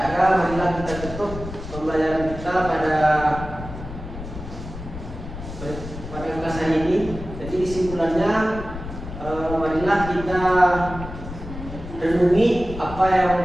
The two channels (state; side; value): noise; left; rumble, 10 dB below the sound